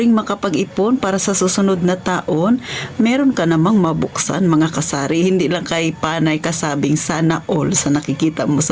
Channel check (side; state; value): both; identical; correlation 1.00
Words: makapag-ipon para sa susunod na taon. Meron ka namang mabuksan mga kasari. Hindi lang kay panay kasabing sana all sa nakikita mo